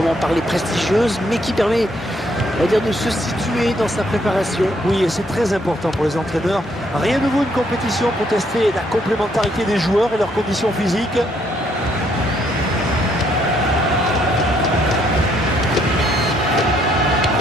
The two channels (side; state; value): both; normal; correlation 0.70